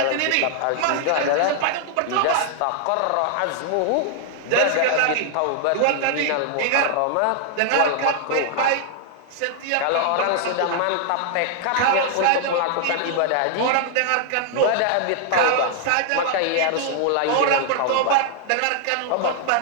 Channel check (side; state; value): both; different; correlation 0.00